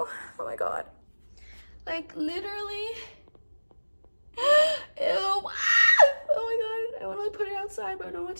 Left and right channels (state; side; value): inverted; both; correlation -1.00